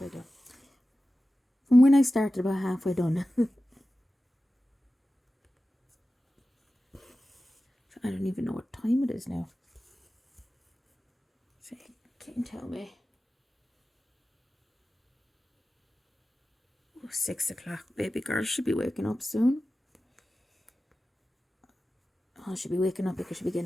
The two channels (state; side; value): normal; both; correlation 0.95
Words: there. From when I started, about halfway done. So I don't even know what time it is now. So you can't tell me. Oh, 6 o'clock. Baby girl should be waking up soon. Oh, she'll be waking up because she'll be